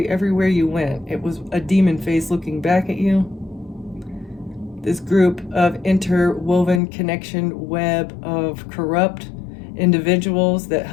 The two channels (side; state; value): right; drops out; at 6.8 s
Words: everywhere you went. It was a demon face looking back at you. This group of interwoven connection web of corrupt individuals that